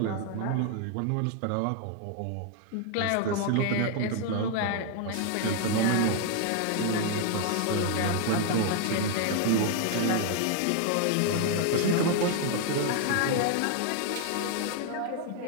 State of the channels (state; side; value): different; both; correlation 0.00